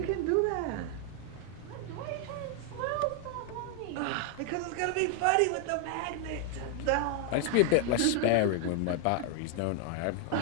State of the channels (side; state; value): both; different; correlation 0.00